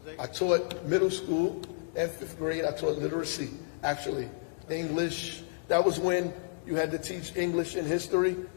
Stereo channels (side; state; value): right; silent; digital silence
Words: I taught middle school and 5th grade. I taught literacy, actually. English. That was when you had to teach English and history,